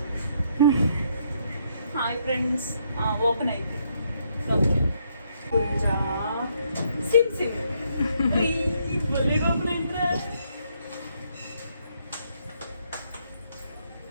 Hi friends. Open అయితే గుజ్జా సిప్ సిప్ భలేగా ఓపెన్ అయిందిరా.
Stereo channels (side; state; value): both; inverted; correlation -0.73